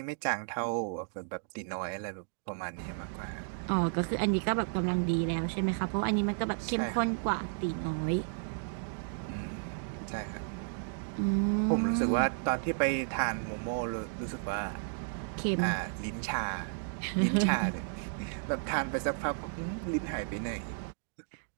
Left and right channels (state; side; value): silent; left; digital silence